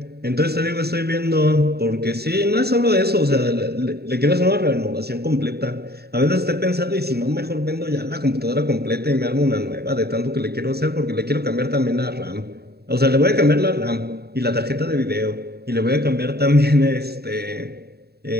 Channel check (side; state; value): left; late; 0.47 ms